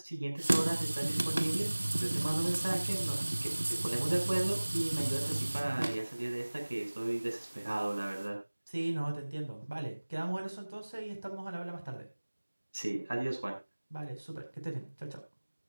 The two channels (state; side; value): inverted; both; correlation -1.00